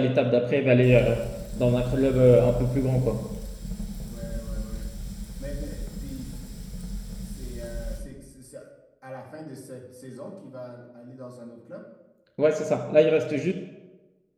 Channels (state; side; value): identical; both; correlation 1.00